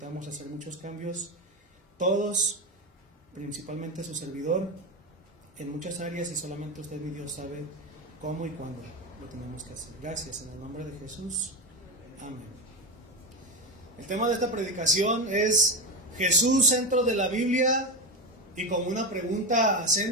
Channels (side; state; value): both; normal; correlation 0.16